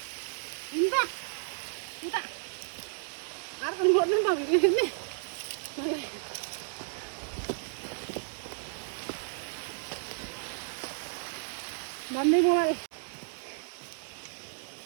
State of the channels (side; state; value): left; silent; digital silence